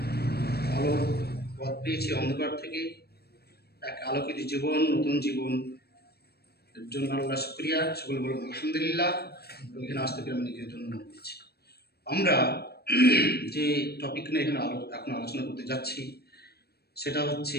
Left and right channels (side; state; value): right; late; 0.47 ms